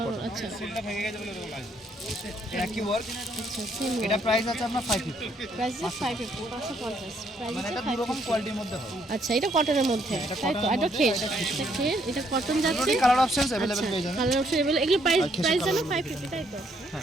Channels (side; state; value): both; normal; correlation 0.70